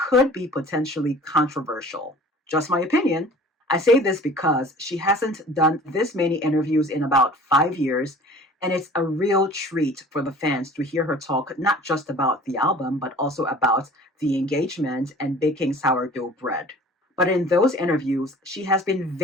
be potentially controversial. Just my opinion. I say this because she hasn't done this many interviews in about 5 years, and it's a real treat for the fans to hear her talk not just about the album, but also about the engagement and baking sourdough bread. But in those interviews, she has been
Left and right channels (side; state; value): both; normal; correlation 0.46